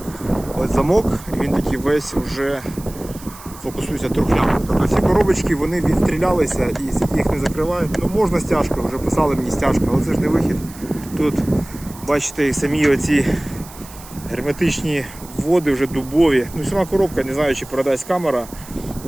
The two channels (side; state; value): right; noise; hiss, 18 dB below the sound